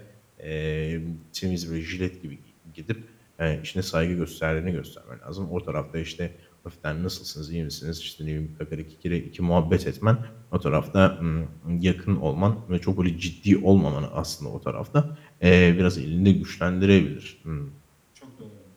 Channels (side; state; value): both; identical; correlation 1.00